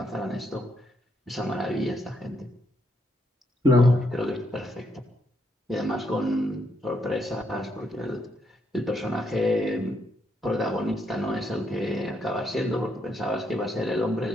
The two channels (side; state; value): both; normal; correlation 0.76